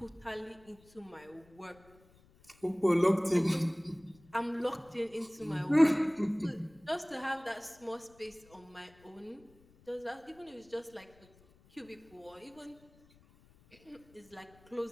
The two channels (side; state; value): left; noise; rumble, 28 dB below the sound